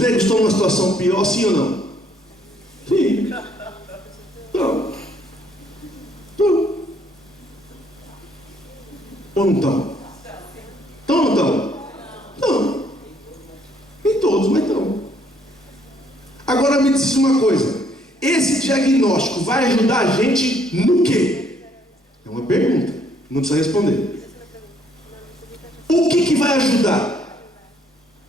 estão numa situação pior, sim ou não? Sim. Não. Ou não estão? Estão ou não estão? Não. Nem todos, mas estão. Agora me diz uma coisa: esse diagnóstico vai ajudar a gente no quê? É uma pergunta, não precisa responder. O que vai ajudar?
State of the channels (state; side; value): normal; both; correlation 0.66